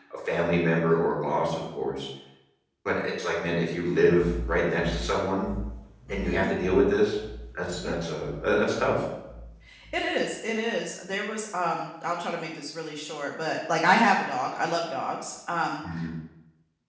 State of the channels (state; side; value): identical; both; correlation 1.00